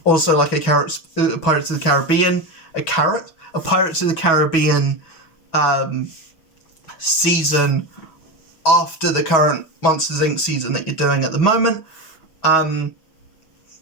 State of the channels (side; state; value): right; late; 6.2 ms